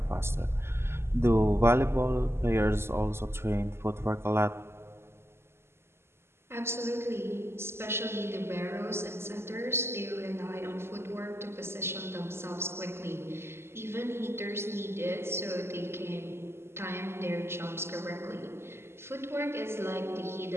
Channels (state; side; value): late; left; 0.12 ms